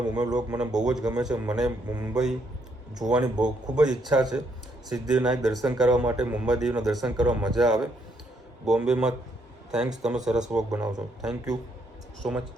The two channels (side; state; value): both; normal; correlation 0.73